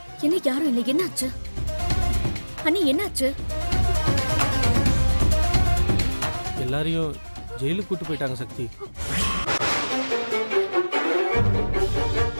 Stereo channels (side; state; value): both; inverted; correlation -1.00